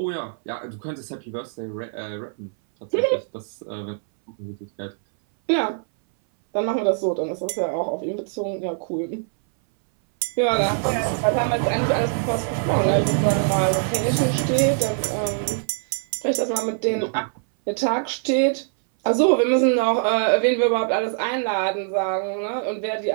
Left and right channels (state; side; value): silent; left; 60 dB below the other